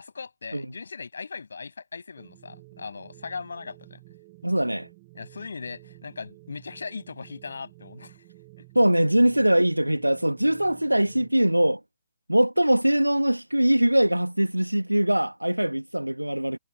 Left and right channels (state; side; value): inverted; both; correlation -1.00